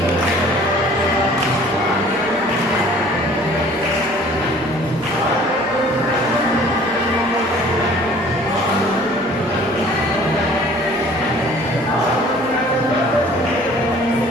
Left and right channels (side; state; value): left; noise; hum, 28 dB below the sound